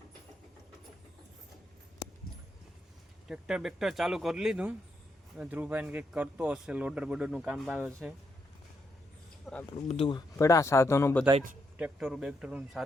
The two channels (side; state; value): both; normal; correlation 0.79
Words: ટ્રેક્ટર બેક્ટર ચાલુ કરી લીધું. ધ્રુવભાઈને કંઈક કરતો હશે. લોડર બોડરનું કામ આવે છે. આપણું બધું પડ્યા સાધનો બધા જ ટ્રેક્ટરો બેક્ટરોનું